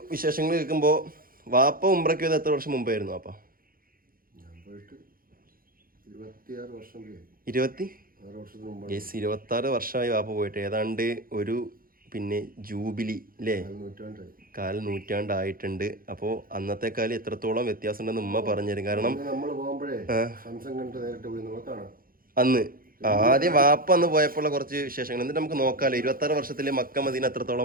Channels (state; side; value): late; left; 0.42 ms